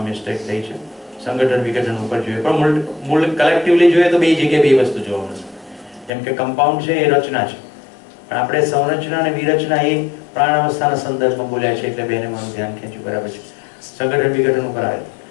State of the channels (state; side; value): drops out; right; at 6.1 s